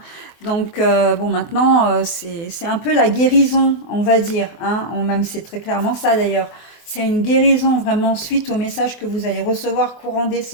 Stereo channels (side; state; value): right; late; 24 ms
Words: Donc bon maintenant c'est un peu la guérison, on va dire, hein, même c'est très clairement ça d'ailleurs. C'est une guérison vraiment suite au message que vous allez recevoir courant